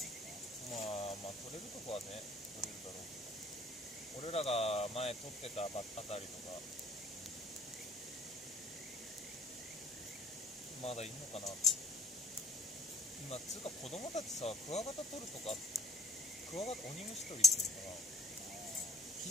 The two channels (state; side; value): normal; both; correlation 0.53